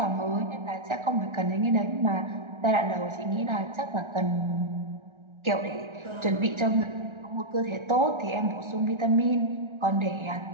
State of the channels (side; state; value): left; late; 1.3 ms